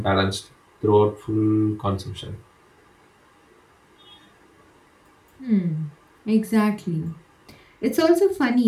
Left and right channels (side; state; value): both; identical; correlation 1.00